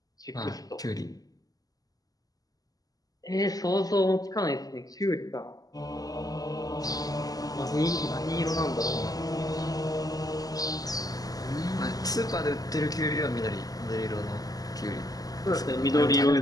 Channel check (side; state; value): right; late; 0.18 ms